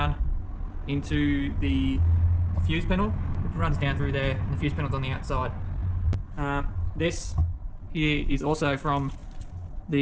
into the fuse panel. It runs down through there, and the fuse panel's on the outside. This here is also from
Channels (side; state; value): both; identical; correlation 1.00